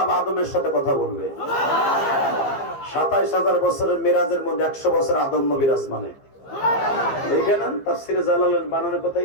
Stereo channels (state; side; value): late; right; 15 ms